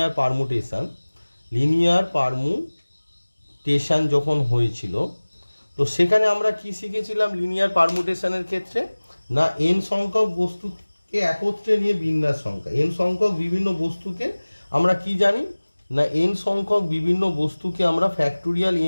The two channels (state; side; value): inverted; both; correlation -1.00